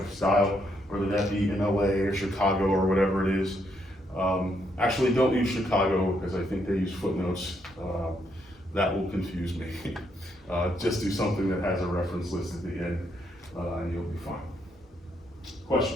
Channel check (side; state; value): both; normal; correlation 0.75